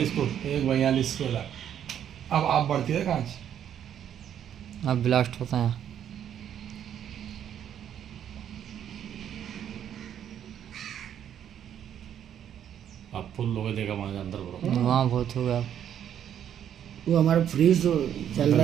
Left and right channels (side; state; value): left; quieter; 9.6 dB